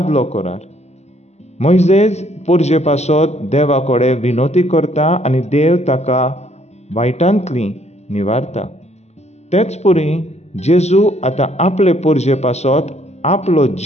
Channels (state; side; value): late; right; 0.32 ms